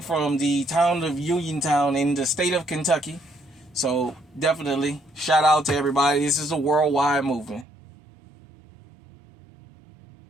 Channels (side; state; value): left; drops out; at 7.7 s